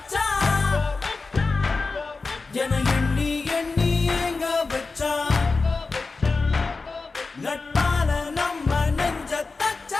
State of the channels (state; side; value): quieter; right; 4.0 dB